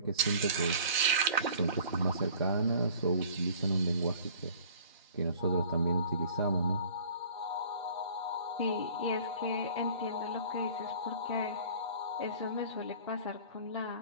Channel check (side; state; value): both; inverted; correlation -0.48